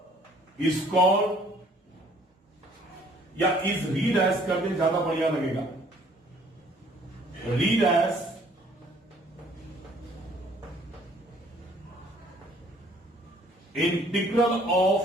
इज कॉल्ड, या इज रीड एज कर दे ज्यादा बढ़िया लगेगा, read as integral of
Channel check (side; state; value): both; normal; correlation 0.58